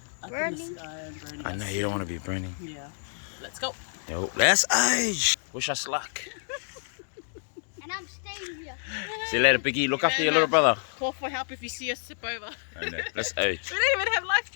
up in the sky and burning. I know us. you don't want to be burning. Yeah, let's go. Yo, let's age. Wish us luck. And I'm staying here. See you later, Biggie. Look after your little brother. Call for help if you see us tip over. I know. Let's age. We don't even have life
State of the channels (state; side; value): silent; right; digital silence